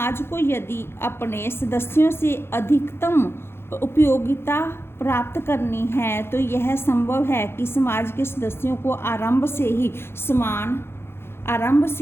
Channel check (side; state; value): right; late; 0.12 ms